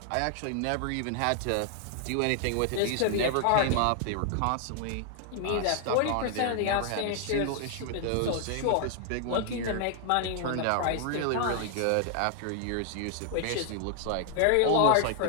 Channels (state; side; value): different; both; correlation 0.00